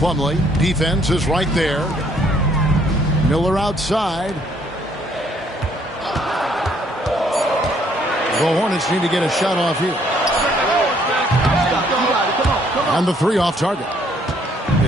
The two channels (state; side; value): normal; both; correlation 0.66